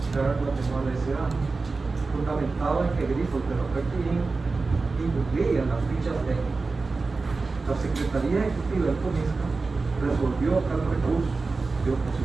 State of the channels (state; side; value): quieter; left; 3.9 dB